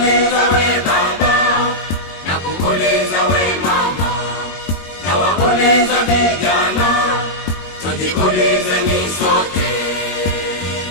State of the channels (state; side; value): late; right; 21 ms